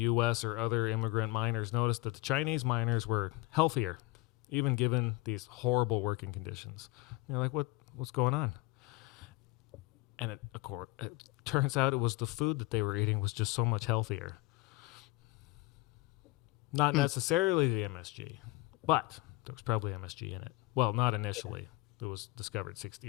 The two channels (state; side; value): quieter; right; 20.0 dB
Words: or other immigrant miners noticed that the Chinese miners were healthier, even given these horrible working conditions. You're like, what's going on? And it turns out it was the food that they were eating was just so much healthier. Not necessarily the MSG, but there was probably MSG in it. Well, not initially. It was discovered 60